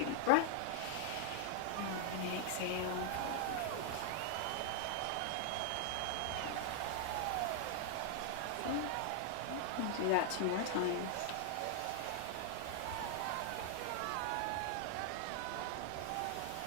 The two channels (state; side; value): different; both; correlation 0.00